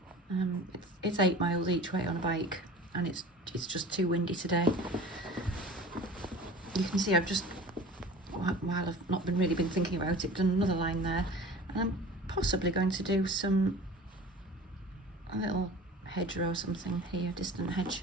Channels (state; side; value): normal; both; correlation 0.40